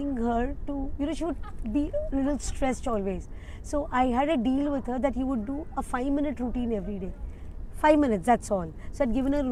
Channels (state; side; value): identical; both; correlation 1.00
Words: her to, she would be a little stressed always. So I had a deal with her that you would do a 5-minute routine every day. 5 minutes, that's all. So I'd given her a